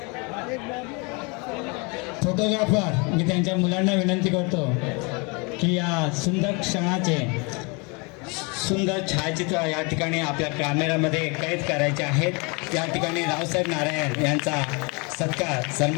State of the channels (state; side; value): quieter; right; 30.3 dB